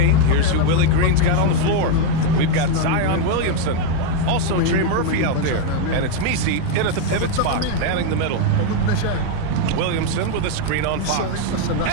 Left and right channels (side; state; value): both; different; correlation 0.01